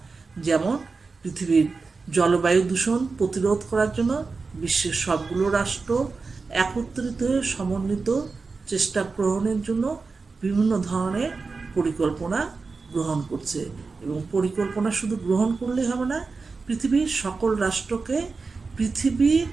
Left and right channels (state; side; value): quieter; left; 4.3 dB